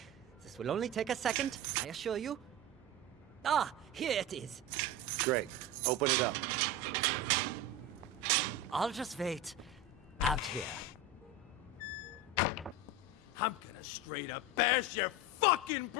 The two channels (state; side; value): normal; both; correlation 0.23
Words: This will only take a second, I assure you. Ah, here it is. Great. Open it up. I'll just wait out here. I'm gonna straight up bash your fucking